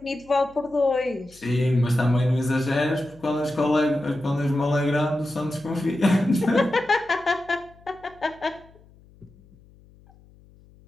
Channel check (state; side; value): noise; left; hum, 27 dB below the sound